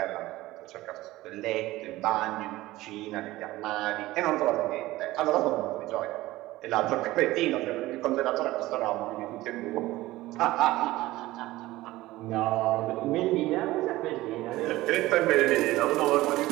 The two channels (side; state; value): left; quieter; 17.6 dB